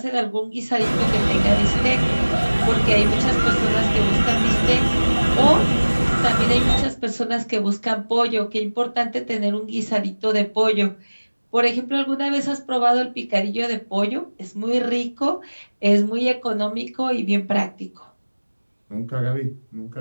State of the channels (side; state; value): both; inverted; correlation -1.00